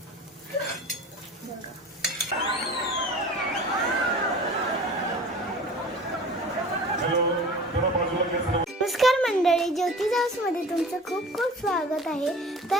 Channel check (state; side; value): normal; both; correlation 0.41